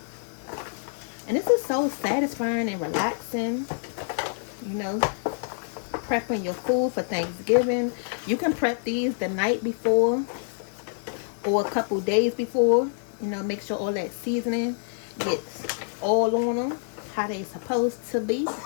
And this is so satisfying and relaxing. You know, prepping your food for Thanksgiving. You can prep these the night before or a couple days before. You know, make sure all that seasoning gets all on them how they supposed to be.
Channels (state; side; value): silent; right; digital silence